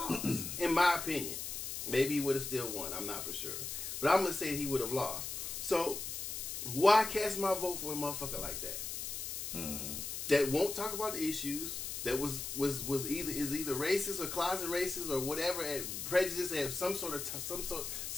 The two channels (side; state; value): left; noise; hiss, 5 dB below the sound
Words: In my opinion, maybe he would have still won. I'm not for sure, but I'm gonna say he would have lost. So why cast my vote for a motherfucker like that? That won't talk about the issues. That was either racist or closet racist or whatever, prejudice at some